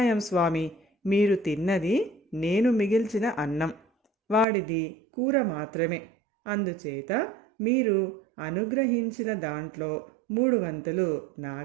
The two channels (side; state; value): left; drops out; at 4.5 s